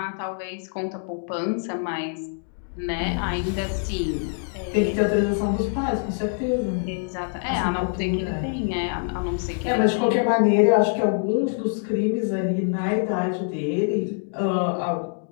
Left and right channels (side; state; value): right; silent; 61 dB below the other